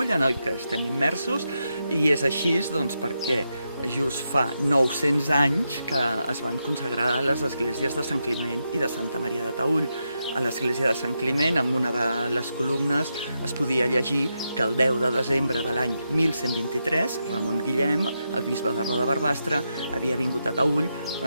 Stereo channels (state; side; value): inverted; both; correlation -0.85